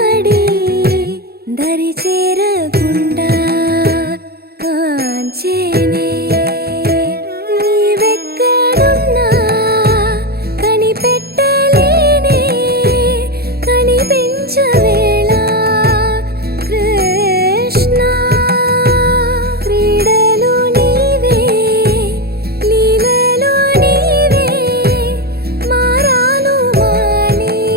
దరి చేరకుండా కాంచేనే నీవెక్కడున్నా కనిపెట్టలేనే కనిపించవేళ కృష్ణ క్రీడలు నీవే లీలలు నీవే మారాను మాని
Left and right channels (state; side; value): late; left; 0.46 ms